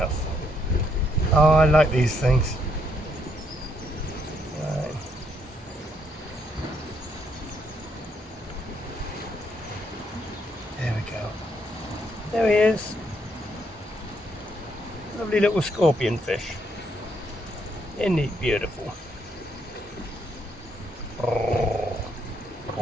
Oh, I like these things. Right. There we go. There he is. Lovely little scorpion fish. Isn't he beautiful? Oh.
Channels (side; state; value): both; normal; correlation 0.73